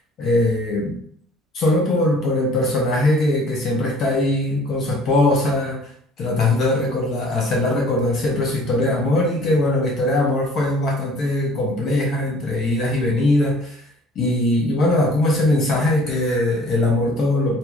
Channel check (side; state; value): both; normal; correlation 0.52